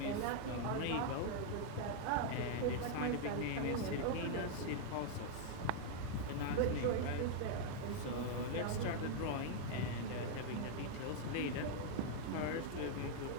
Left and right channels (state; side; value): different; both; correlation 0.00